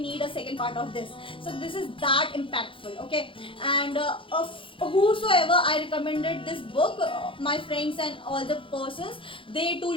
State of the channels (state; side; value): late; right; 0.25 ms